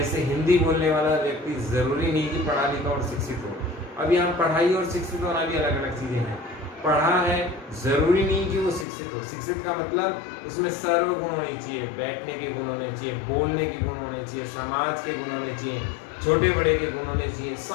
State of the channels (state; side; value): drops out; right; at 8.8 s